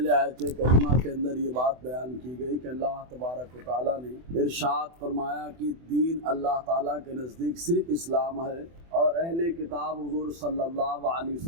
آیت کریمہ کے اندر یہ بات بیان کی گئی کہ اللہ تبارک و تعالیٰ نے ارشاد فرمایا کہ دین اللہ تعالیٰ کے نزدیک صرف اسلام ہے، اور اہل کتاب حضور صلی اللہ علیہ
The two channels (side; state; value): left; late; 24 ms